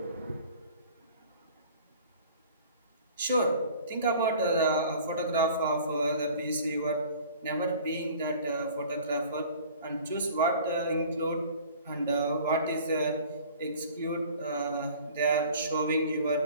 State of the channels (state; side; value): inverted; both; correlation -0.47